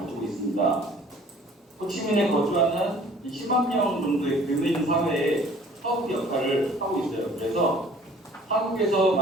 있습니다. 호치민에 거주하는 10만 명 정도의 교민 사회에 사업 역할을 하고 있어요. 그래서 한국에서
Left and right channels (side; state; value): both; normal; correlation 0.52